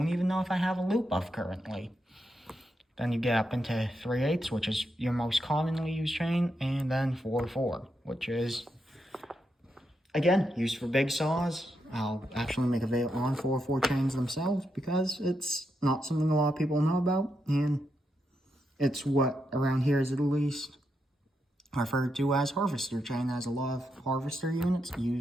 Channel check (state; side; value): normal; both; correlation 0.83